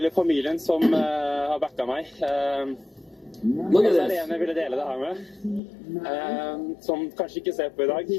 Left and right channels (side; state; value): right; drops out; at 5.6 s